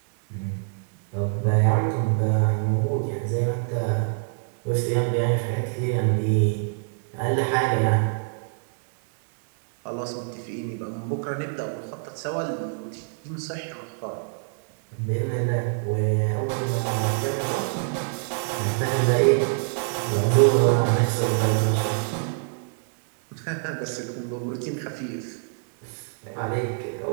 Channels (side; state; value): left; silent; digital silence